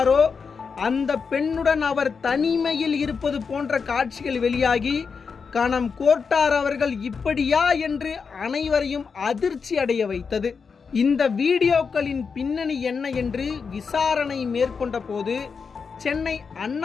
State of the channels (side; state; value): right; quieter; 5.5 dB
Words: அந்த பெண்ணுடன் அவர் தனிமையில் இருப்பது போன்ற காட்சிகள் வெளியாகி கணம் கோர்ட்டார் அவர்கள் இப்படியா என்று அனைவரையும் அதிர்ச்சி அடைய வைத்தது. இந்த வீடியோக்களின் பின்னணி என்ன என்று விசாரணை மேற்கொண்ட போது சென்னை